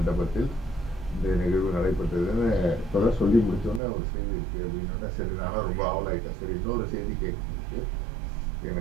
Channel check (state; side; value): drops out; left; at 3.8 s